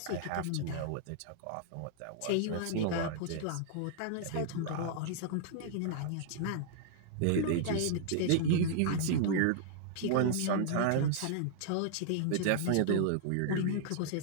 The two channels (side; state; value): both; different; correlation -0.01